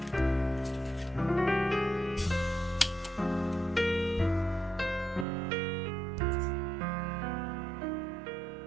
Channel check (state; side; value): drops out; left; at 5.2 s